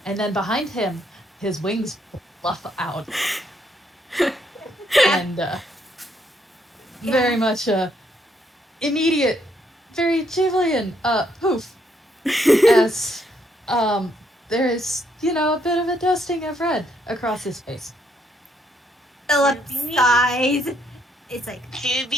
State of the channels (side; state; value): both; normal; correlation 0.72